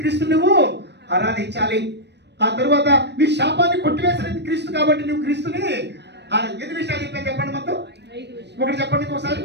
క్రీస్తుని నువ్వు ఆరాధించాలి. ఆ తర్వాత నీ శాపాన్ని కొట్టివేసినది క్రీస్తు కాబట్టి నువ్వు క్రీస్తుని 8 విషయాలు చెప్పాను. చెప్పండి మొత్తం. ఒకటి చెప్పండి ఒకసారి.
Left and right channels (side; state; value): left; late; 0.50 ms